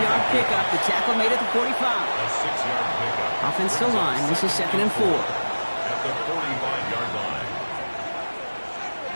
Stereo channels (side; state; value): both; inverted; correlation -1.00